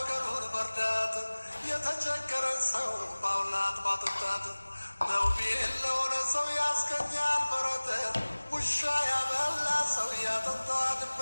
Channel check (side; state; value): both; inverted; correlation -1.00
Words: መርዳት የተቸገረን ሰው ማብላት ማጠጣት መውቢ የለውን ሰው ያስገኛል በረት ውሻ ያበላ ሰው ያጠጣ